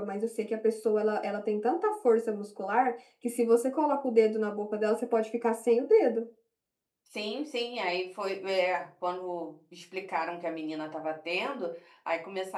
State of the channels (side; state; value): both; identical; correlation 1.00